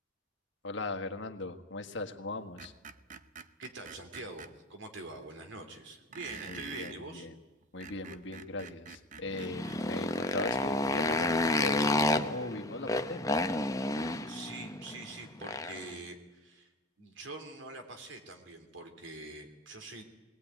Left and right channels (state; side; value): normal; both; correlation 0.32